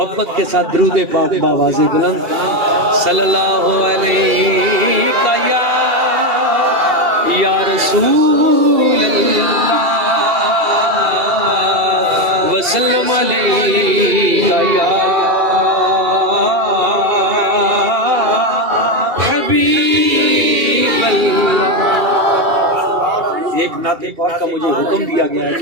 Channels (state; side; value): late; left; 2.3 ms